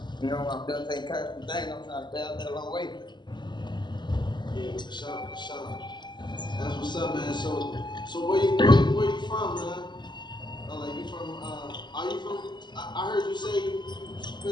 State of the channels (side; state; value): right; late; 0.21 ms